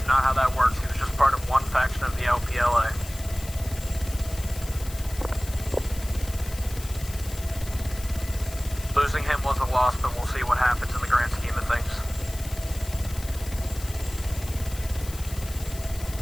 not how that works. He was just part of one faction of the LPLA. Losing him was a loss, but we'll see what happens in the grand scheme of things.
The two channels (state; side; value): noise; left; hiss, 14 dB below the sound